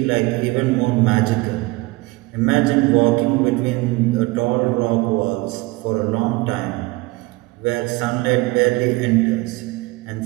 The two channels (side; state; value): left; quieter; 22.3 dB